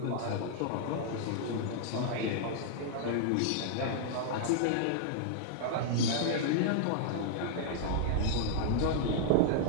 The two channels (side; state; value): both; different; correlation -0.01